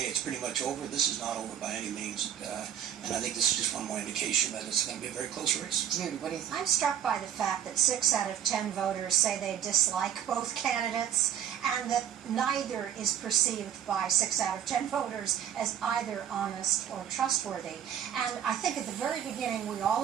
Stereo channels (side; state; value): left; quieter; 9.9 dB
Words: it's pretty much over. This is not over by any means. And I think this is just one more indication that it's going to be a very close race. Judy, what do you think? I'm struck by the fact that 6 out of 10 voters say they dislike both candidates, and that neither is perceived by 6 out of 10 voters as either honest or trustworthy. And I think at the very beginning we all